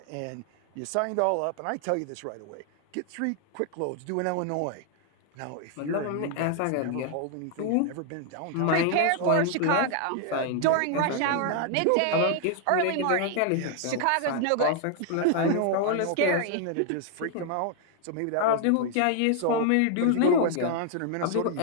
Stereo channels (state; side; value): different; both; correlation 0.00